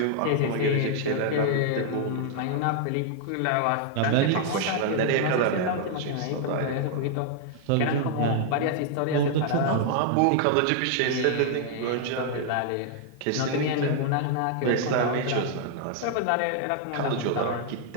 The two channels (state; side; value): different; both; correlation -0.01